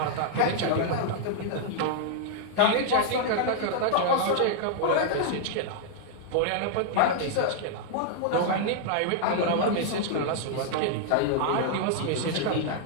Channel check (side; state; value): both; different; correlation -0.01